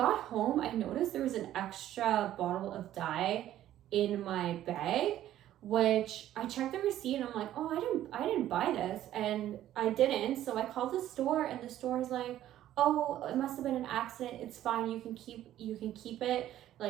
home I noticed there was an extra bottle of dye in my bag, which I checked the receipt and I'm like, oh, I didn't buy this, and I didn't. So I called the store and the store is like, oh, it must have been an accident, it's fine, you can keep it,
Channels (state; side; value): quieter; left; 12.7 dB